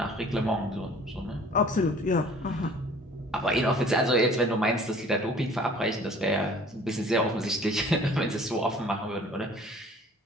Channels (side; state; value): both; normal; correlation 0.50